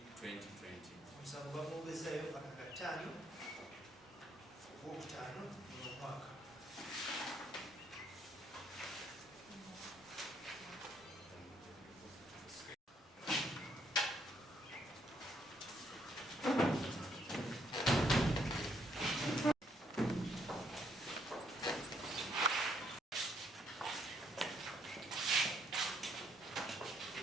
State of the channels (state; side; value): normal; both; correlation 0.70